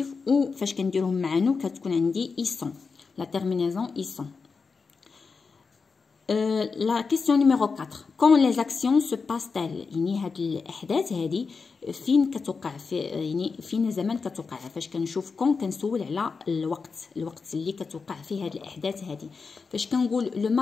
ou فاش كنديرهم مع نو كتكون عندي ils sont. La terminaison ils sont. La question numéro 4. Quand les actions se passent-elles؟ يعني هاد الأحداث هادي فين كتوقع يعني فين زمان كتوقع. فاش كنشوف كون كنسول على الوقت اللي كتوقع فيه هاد الأحداث هادي. فاش كنقول لو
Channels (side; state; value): right; quieter; 4.9 dB